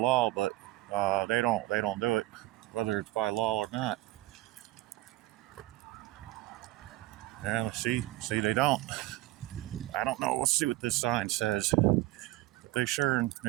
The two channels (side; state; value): left; quieter; 17.8 dB